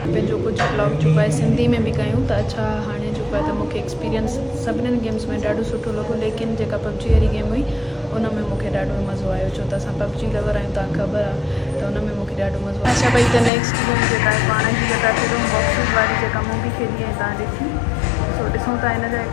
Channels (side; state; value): right; drops out; at 13.5 s